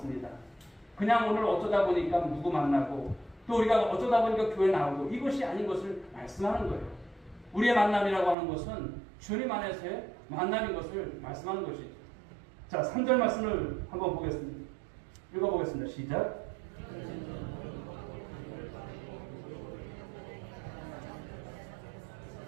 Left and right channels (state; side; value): drops out; left; at 8.3 s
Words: 그냥 오늘 어쩌다 보니까 누구 만나고 또 우리가 어쩌다 보니까 교회 나오고 이것이 아닌 것을 말씀하는 거예요. 우리의 만남이라고 하는 것은 주님 안에서의 만남인 것을 말씀하는 것이죠. 자, 3절 말씀을 한번 보겠습니다. 읽어보겠습니다. 시작.